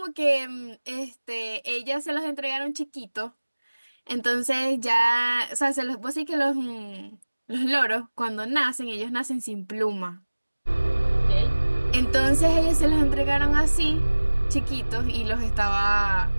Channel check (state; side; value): inverted; both; correlation -1.00